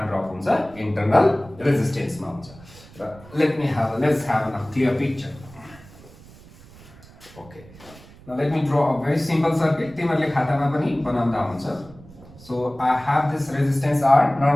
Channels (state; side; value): noise; right; rumble, 21 dB below the sound